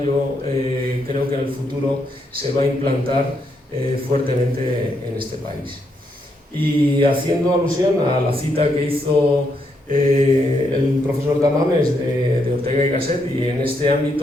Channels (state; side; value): normal; both; correlation 0.77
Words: yo creo que en el futuro se va a implantar fuertemente en este país. Y haciendo alusión a la cita que hizo el profesor Tamames de Ortega y Gasset, y en este